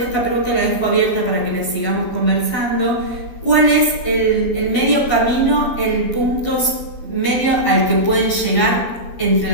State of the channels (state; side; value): late; right; 12 ms